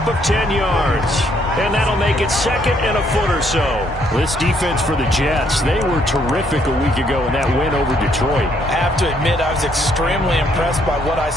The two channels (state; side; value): normal; both; correlation 0.69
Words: of 10 yards. And that'll make it second and a foot or so. This defense for the Jets, they were terrific a week ago in that win over Detroit. I have to admit, I was extremely impressed by what I